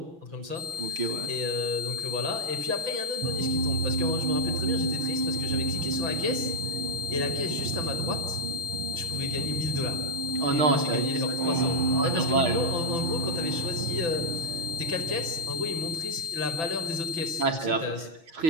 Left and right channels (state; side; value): late; left; 6.0 ms